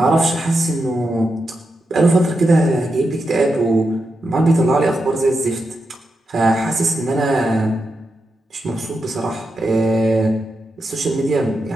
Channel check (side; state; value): both; normal; correlation 0.87